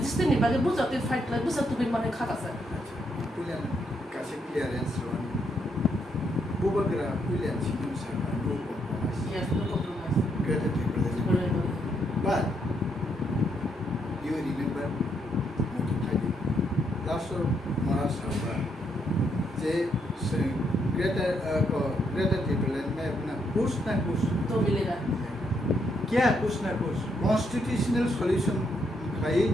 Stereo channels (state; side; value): normal; both; correlation 0.76